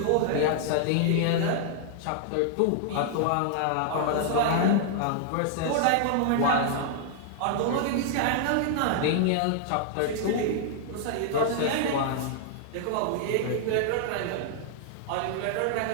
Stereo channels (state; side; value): different; both; correlation -0.01